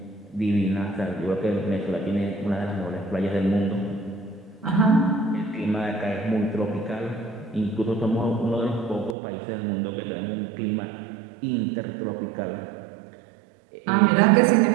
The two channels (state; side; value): drops out; left; at 9.2 s